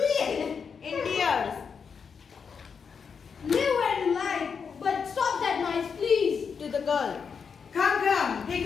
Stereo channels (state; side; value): quieter; right; 6.1 dB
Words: In tears. Live where you like, but stop that noise, please. To the girl. Come, he